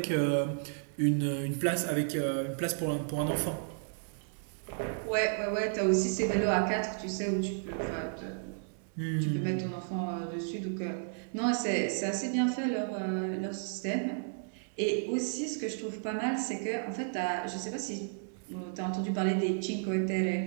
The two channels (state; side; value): silent; left; 56 dB below the other